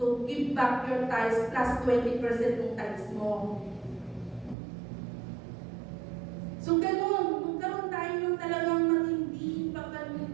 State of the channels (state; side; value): drops out; left; at 4.5 s